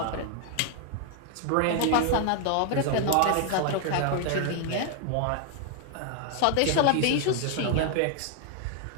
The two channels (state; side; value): different; both; correlation 0.00